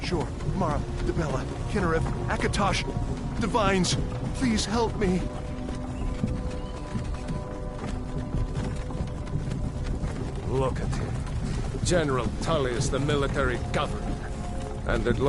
Sure. Mara, Dibella, Kinnereth, Akatosh, Divines, please help me. Look at him. General Tullius, the military governor. And it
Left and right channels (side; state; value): both; identical; correlation 1.00